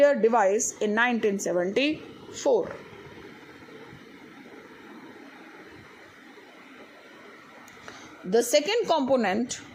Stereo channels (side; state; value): both; identical; correlation 1.00